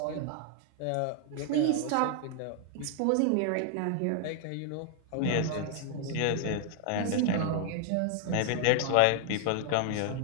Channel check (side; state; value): both; different; correlation 0.00